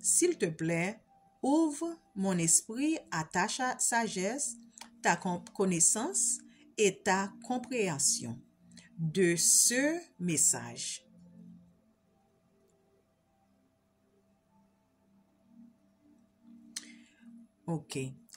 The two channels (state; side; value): identical; both; correlation 1.00